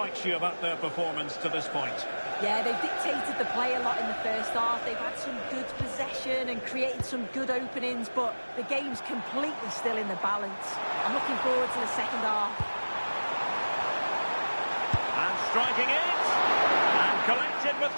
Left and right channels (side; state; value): both; inverted; correlation -1.00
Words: you about their performance to this point? Yeah, they've dictated the play a lot in the first half. They've had some good possession and created some good openings, but the game's completely still in the balance. I'm looking forward to the second half. And striking it! And collected with